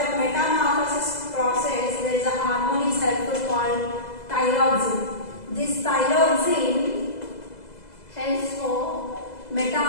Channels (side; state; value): right; late; 2.0 ms